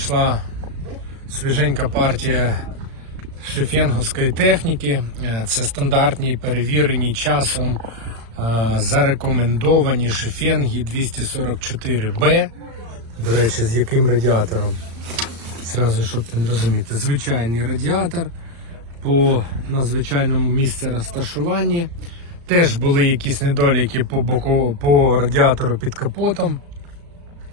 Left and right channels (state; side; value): late; left; 35 ms